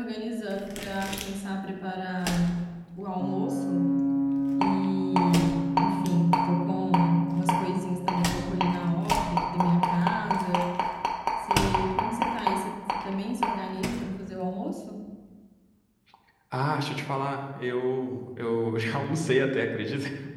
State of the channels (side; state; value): both; identical; correlation 1.00